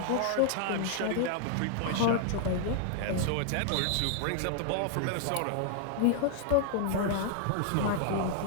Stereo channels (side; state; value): both; different; correlation 0.00